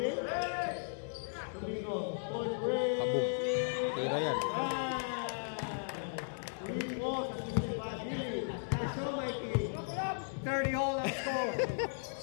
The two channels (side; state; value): right; silent; digital silence